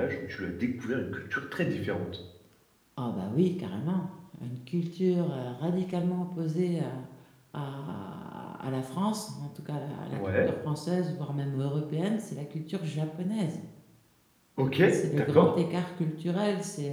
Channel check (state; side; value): identical; both; correlation 1.00